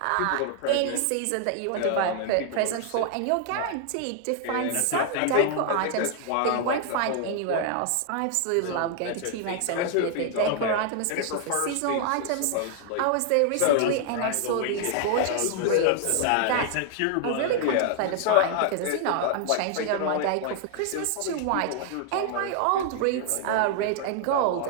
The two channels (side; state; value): both; different; correlation 0.00